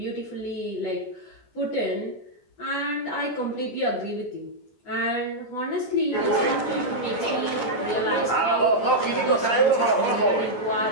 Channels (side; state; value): right; late; 14 ms